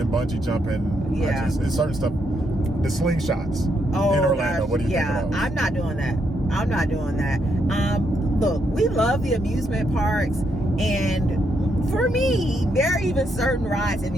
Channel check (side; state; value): both; normal; correlation 0.77